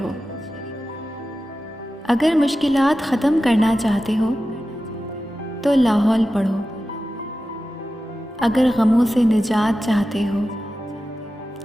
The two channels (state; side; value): normal; both; correlation 0.93